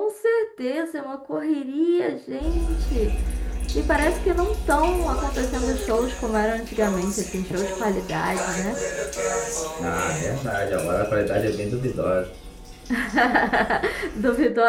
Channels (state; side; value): identical; both; correlation 1.00